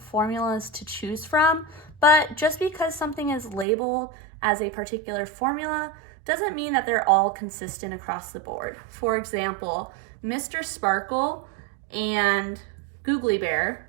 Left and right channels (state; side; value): drops out; left; at 3.7 s